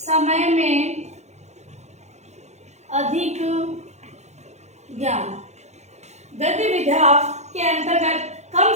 में अधिक ज्ञान, गद्य विधा के अंतर्गत कम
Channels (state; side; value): late; left; 0.33 ms